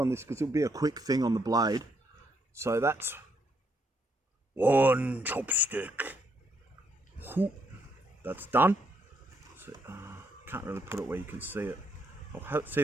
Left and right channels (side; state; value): both; normal; correlation 0.75